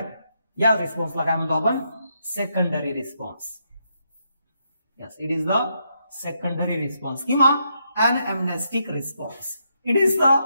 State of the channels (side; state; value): both; inverted; correlation -0.79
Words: या रिस्पॉन्सला काय म्हणतो आपण, secondary response. Yes, it is the secondary response किंवा anamnestic response. It is the